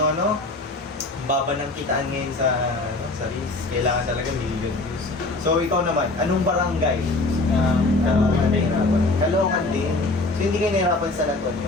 ano, baba ng kitaan ngayon sa Reels. Kailangan talaga million views. So ikaw naman, anong barangay? Caloocan din. Caloocan din. So hindi kayo nahirapan sa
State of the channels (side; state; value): right; quieter; 3.0 dB